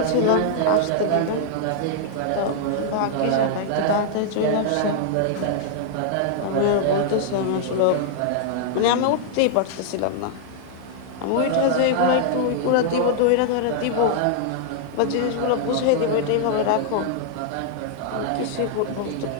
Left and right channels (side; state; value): both; different; correlation -0.01